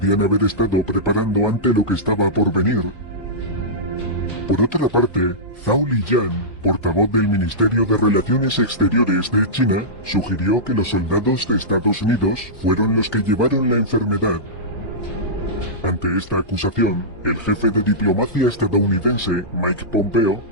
haber estado preparando ante lo que estaba por venir. Por otra parte, Zhao Lijian, portavoz del Ministerio de Relaciones Exteriores de China, sugirió que los soldados de Estados Unidos fueron los que llevaron la enfermedad. Ante esta acusación, el jefe de diplomacia estadounidense, Mike Pompeo,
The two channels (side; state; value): right; late; 1.3 ms